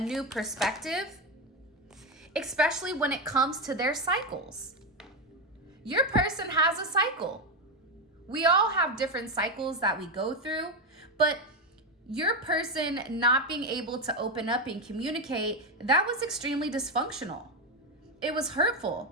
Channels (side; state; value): both; normal; correlation 0.11